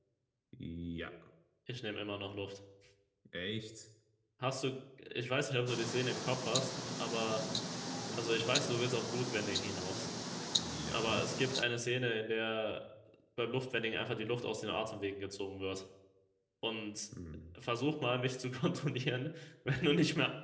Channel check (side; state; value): both; identical; correlation 1.00